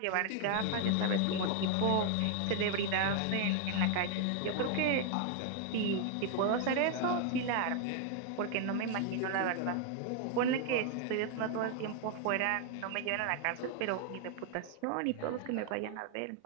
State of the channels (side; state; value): both; different; correlation 0.00